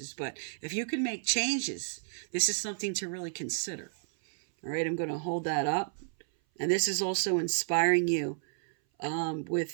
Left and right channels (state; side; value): silent; left; 57 dB below the other